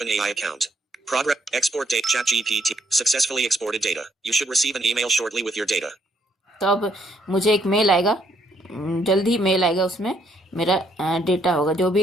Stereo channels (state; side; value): normal; both; correlation 0.71